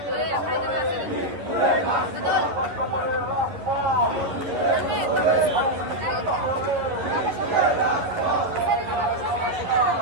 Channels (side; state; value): left; late; 11 ms